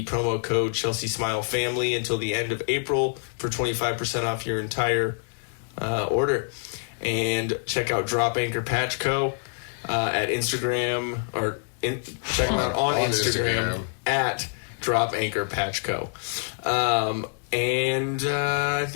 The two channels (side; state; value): right; silent; digital silence